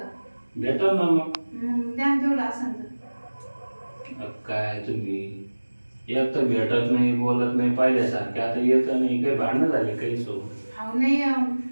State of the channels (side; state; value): both; inverted; correlation -1.00